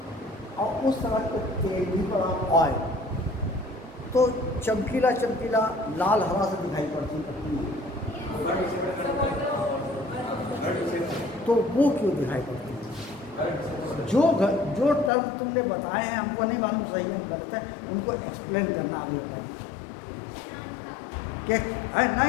और उस तरह के तेल भी पड़ा ऑयल, तो चमकीला लाल हरा से दिखाई पड़ती है, तो वो क्यों दिखाई पड़ती है? जो टर्म तुमने बताए हैं हमको नहीं मालूम सही है गलत है, उनको एक्सप्लेन करना आगे है कि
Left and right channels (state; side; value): drops out; right; at 15.1 s